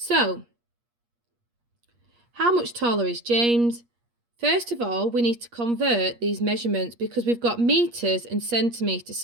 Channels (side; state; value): left; late; 8.5 ms